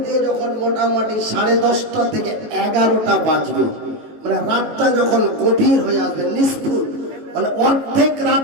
দিয়ে যখন মোটামুটি 10:30 থেকে 11টা বাজবে, মানে রাতটা যখন গভীর হয়ে আসবে, নিষ্ফুল মানে অর্ধেক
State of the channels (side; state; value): left; late; 19 ms